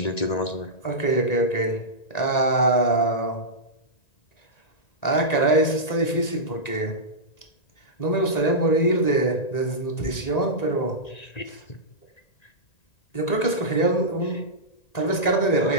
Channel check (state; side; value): late; right; 1.9 ms